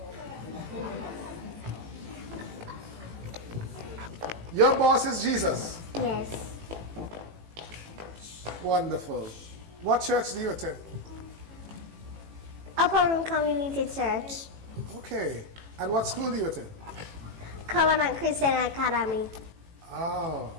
Your boss is Jesus. Yes. Wonderful. What church do you attend? Upper Room Community Church. Okay. And what school do you attend? Covenant Christian Academy. Oh,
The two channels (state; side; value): late; left; 18 ms